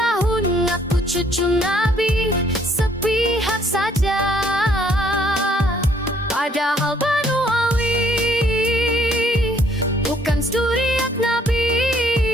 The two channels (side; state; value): both; normal; correlation 0.64